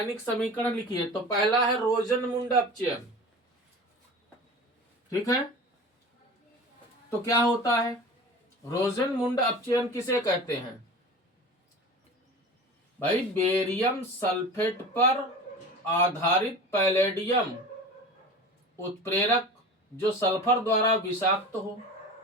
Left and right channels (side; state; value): both; normal; correlation 0.36